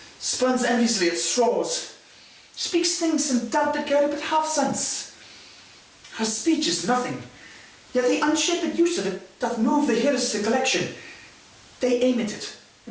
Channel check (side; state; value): both; identical; correlation 1.00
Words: spurns enviously at straws, speaks things in doubt that carry but half sense. Her speech is nothing, yet the unshaped use of it doth move the hearers to collection. They aim at it,